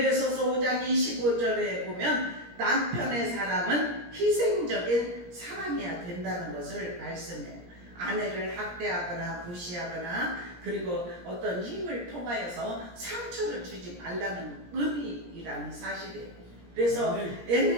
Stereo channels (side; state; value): left; late; 17 ms